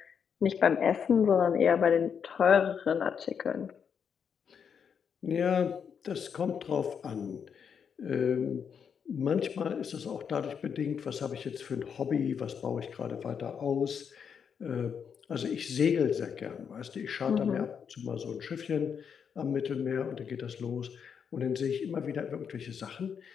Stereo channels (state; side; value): quieter; right; 7.1 dB